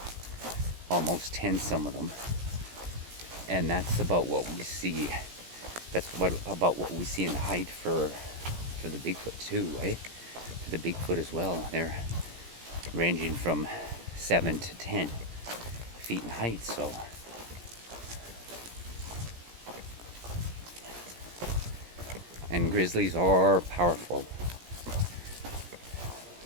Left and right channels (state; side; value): late; left; 17 ms